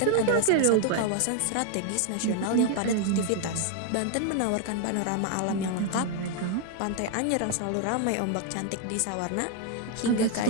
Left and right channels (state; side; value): different; both; correlation 0.00